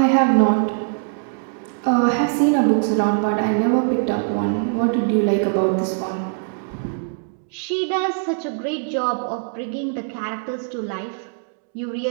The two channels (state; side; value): silent; left; digital silence